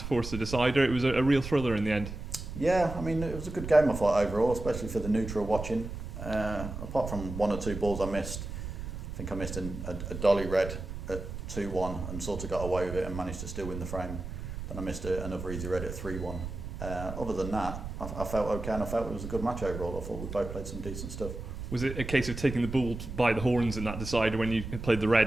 force the decider. It was a real thriller in the end. Yeah, I mean, it was a good game, I thought, overall, especially for the neutral watching. Apart from one or two balls I missed, I think I missed a dolly red at 2-1 and sort of got away with it and managed to still win the frame. Then I missed another easy red at 3-1. Other than that, I felt okay, and I felt it was a good match overall. I thought we both played some decent stuff. Was it a case of taking the bull by the horns in that decider when you played the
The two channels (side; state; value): right; noise; rumble, 8 dB below the sound